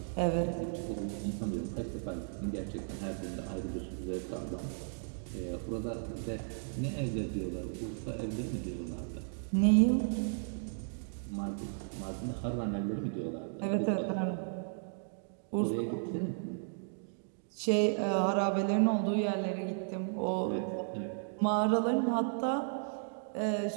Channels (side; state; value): left; silent; digital silence